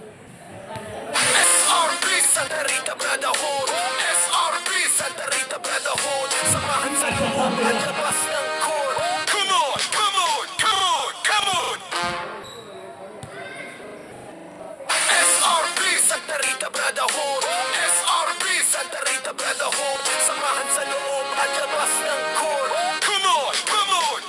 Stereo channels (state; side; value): identical; both; correlation 1.00